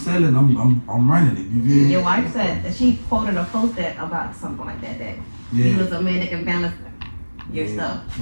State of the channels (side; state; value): both; inverted; correlation -1.00